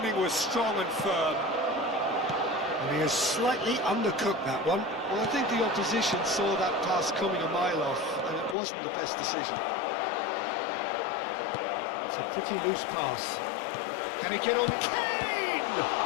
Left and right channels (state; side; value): drops out; right; at 8.6 s